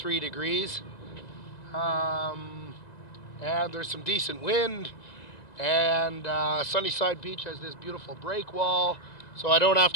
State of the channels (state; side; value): late; right; 1.9 ms